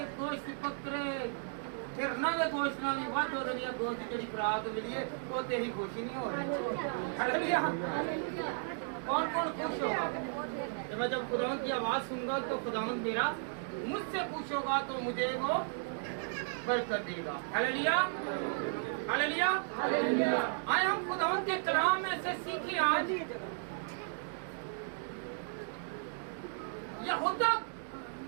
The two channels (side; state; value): left; silent; digital silence